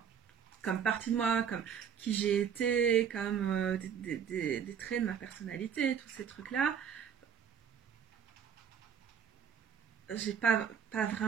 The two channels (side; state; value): left; quieter; 7.9 dB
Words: Comme partie de moi, comme qui j'ai été, comme des traits de ma personnalité, tous ces trucs-là. J'ai pas